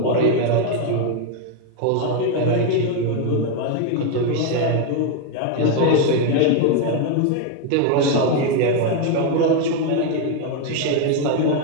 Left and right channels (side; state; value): both; different; correlation 0.01